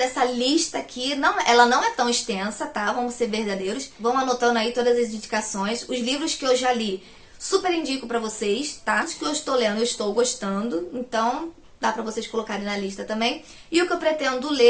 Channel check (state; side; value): identical; both; correlation 1.00